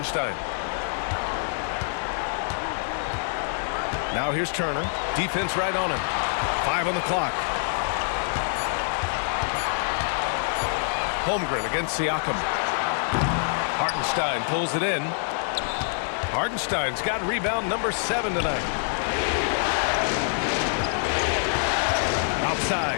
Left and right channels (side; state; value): right; silent; 61 dB below the other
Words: Now here's Turner. Defense right on him. 5 on the clock. Holmgren against Siakam. Hartenstein pulls it in. Hartenstein's got rebound number 7 tonight. Outside,